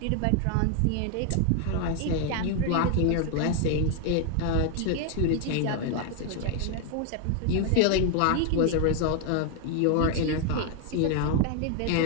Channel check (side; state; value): both; different; correlation 0.00